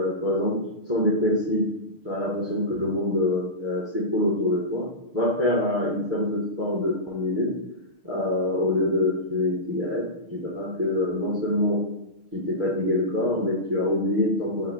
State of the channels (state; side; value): late; left; 6.5 ms